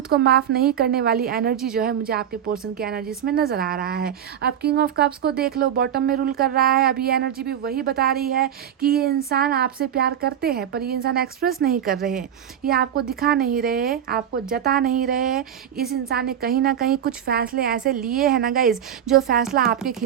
को माफ़ नहीं करने वाली एनर्जी जो है मुझे आपके पोर्शन की एनर्जी इसमें नज़र आ रहा है। अब किंग ऑफ कप्स को देख लो, बॉटम में रूल कर रहा है। अब ये एनर्जी भी वही बता रही है कि ये इंसान आपसे प्यार करते हैं, पर ये इंसान एक्सप्रेस नहीं कर रहे हैं, ये आपको दिखा नहीं रहे, आपको जता नहीं रहे। इस इंसान ने कहीं ना कहीं कुछ फैसले ऐसे लिए हैं ना गाइज, जो फैसला आपके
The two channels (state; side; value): quieter; left; 9.5 dB